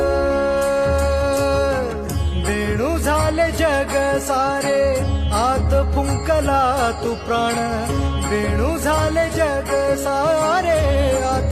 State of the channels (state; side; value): identical; both; correlation 1.00